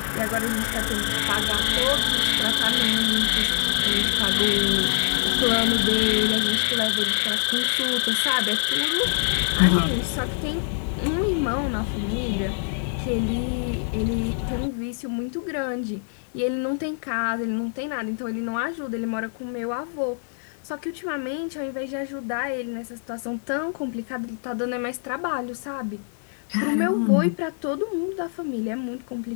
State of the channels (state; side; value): silent; right; digital silence